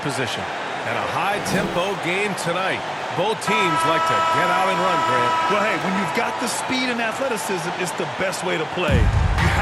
position. And a high-tempo game tonight. Both teams like to get out and run, Grant. Well, hey, when you've got the speed and athleticism, it's the best way to play. You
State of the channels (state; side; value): identical; both; correlation 1.00